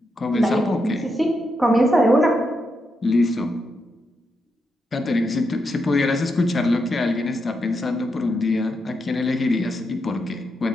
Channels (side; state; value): both; normal; correlation 0.83